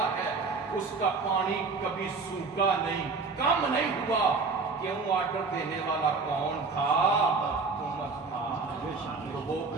ہے، اس کا پانی کبھی سوکھا نہیں، کم نہیں ہوا۔ کیوں؟ آرڈر دینے والا کون تھا؟ عمر تھا۔ تو وہ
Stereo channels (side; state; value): left; quieter; 4.3 dB